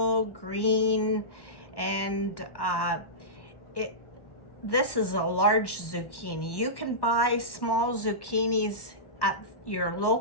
green, and this is a large zucchini. You can buy small zucchinis at your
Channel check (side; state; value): right; late; 1.1 ms